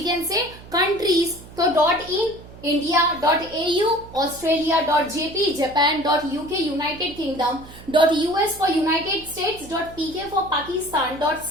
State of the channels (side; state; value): right; noise; hum, 18 dB below the sound